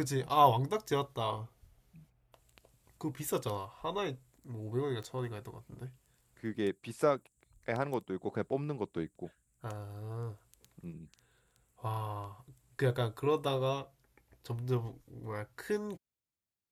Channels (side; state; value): both; identical; correlation 1.00